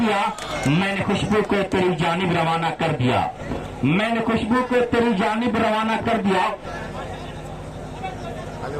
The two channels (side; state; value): both; identical; correlation 1.00